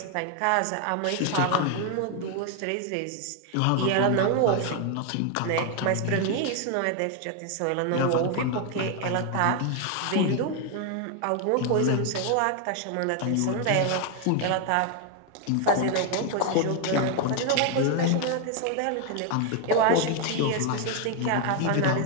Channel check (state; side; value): different; both; correlation 0.01